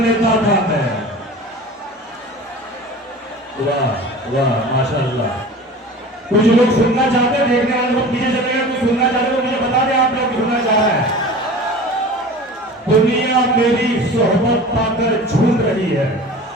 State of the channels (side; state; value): both; normal; correlation 0.38